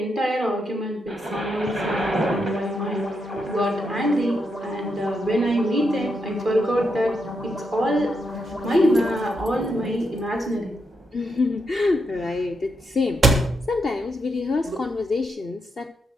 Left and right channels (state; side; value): normal; both; correlation 0.82